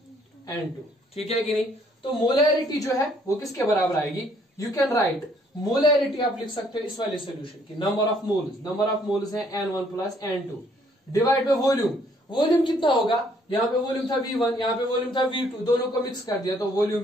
N2. ठीक है कि नहीं. तो मोलैरिटी जो है वो किसके बराबर आएगी, यू कैन राइट मोलैरिटी, आप लिख सकते हो इस वाले सोल्यूशन की नंबर ऑफ मोल्स है N1 plus N2 divide by volume. Volume कितना होगा, यहाँ पे वॉल्यूम था V1, यहाँ पे वॉल्यूम था V2, दोनों को मिक्स कर दिया तो volume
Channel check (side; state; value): both; normal; correlation 0.65